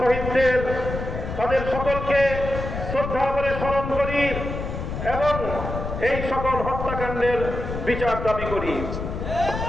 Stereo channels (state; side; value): noise; left; rumble, 5 dB below the sound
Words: তাদের সকলকে শ্রদ্ধা করে স্মরণ করি এবং এই সকল হত্যাকাণ্ডের বিচার দাবি করি।